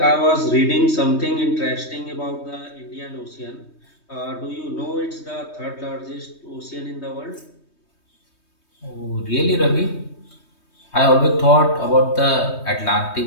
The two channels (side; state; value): right; late; 3.2 ms